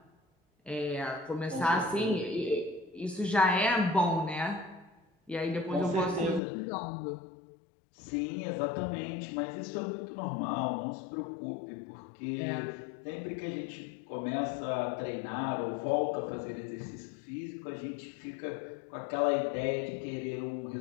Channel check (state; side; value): drops out; right; at 6.4 s